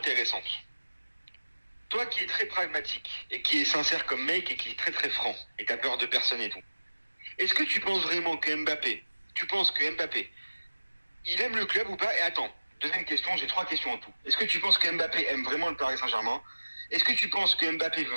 Toi qui es très pragmatique et qui est sincère comme mec et qui est très très franc et t'as peur de personne et tout, est-ce que tu penses vraiment que Mbappé, il aime le club ou pas? Et attends, deuxième question, j'ai 3 questions en tout. Est-ce que tu penses que Mbappé aime vraiment le Paris Saint-Germain? Est-ce que tu penses que Mbappé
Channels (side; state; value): both; inverted; correlation -1.00